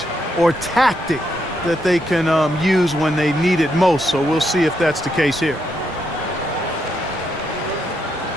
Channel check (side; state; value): both; normal; correlation 0.79